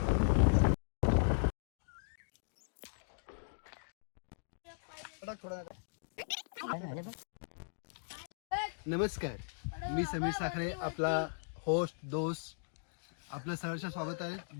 नमस्कार, मी समीर साखरे, आपला होस्ट दोस्त. आपलं सहर्ष स्वागत आहे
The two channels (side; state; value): right; silent; digital silence